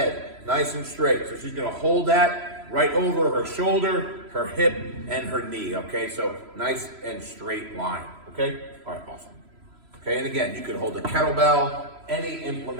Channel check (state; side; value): late; left; 3.0 ms